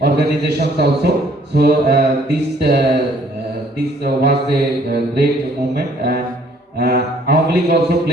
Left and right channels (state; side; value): normal; both; correlation 0.61